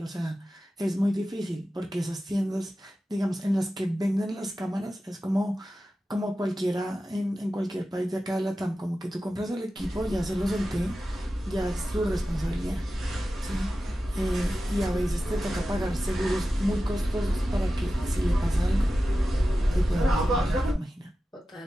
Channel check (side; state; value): both; normal; correlation 0.93